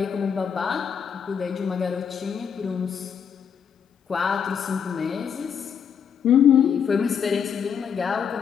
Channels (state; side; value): quieter; right; 7.4 dB